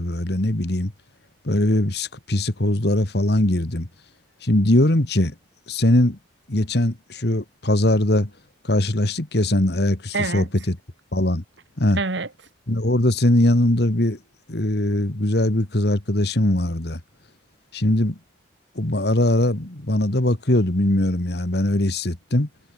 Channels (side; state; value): both; normal; correlation 0.68